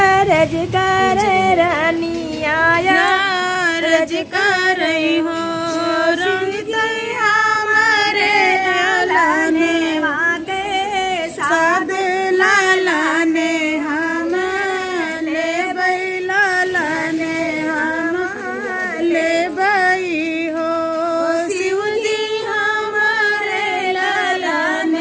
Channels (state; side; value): identical; both; correlation 1.00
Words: रज कर रनिया रज कर